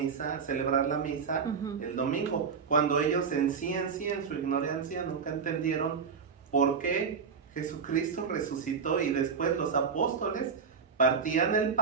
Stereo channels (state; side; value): quieter; left; 5.9 dB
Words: celebrar la misa Ujú. el domingo, cuando ellos en su ignorancia, nunca entendieron por qué Jesucristo resucitó y después los apóstoles partían el